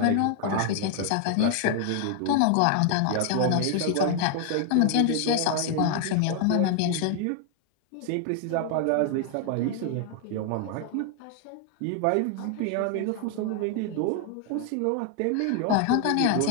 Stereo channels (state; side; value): different; both; correlation 0.00